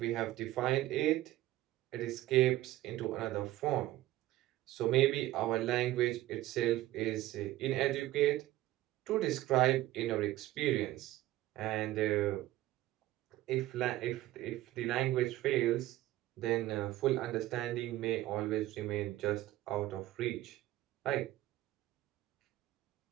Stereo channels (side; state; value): left; quieter; 15.6 dB